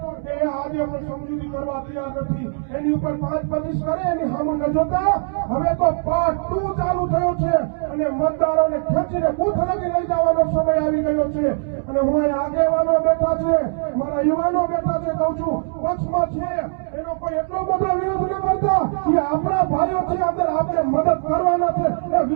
એ આજે પણ સમજૂતી કરવા તૈયાર નથી. એની ઉપર 5-25 કરે એની સામે ન જોતા હવે તો પાર્ટ 2 ચાલુ થયો છે અને મતદારોને ખેંચીને બૂથ લગી લઈ જવાનો સમય આવી ગયો છે. અને હું અહીં આગેવાનો બેઠા છે, મારા યુવાનો બેઠા છે, કહું છું પક્ષમાં છે એનો કોઈ એટલો બધો વિરોધ ન કરતા કે આપણા ભાઈઓ છે, અંદર આપણે મદદ કરવાના છે એ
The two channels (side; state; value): left; silent; 65 dB below the other